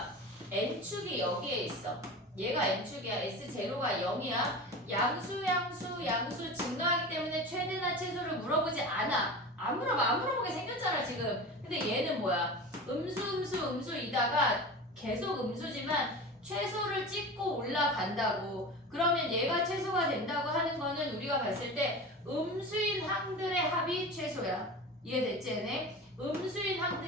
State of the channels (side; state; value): both; normal; correlation 0.31